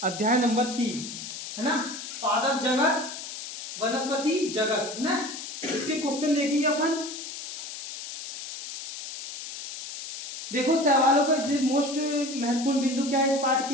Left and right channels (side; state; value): left; noise; hiss, 9 dB below the sound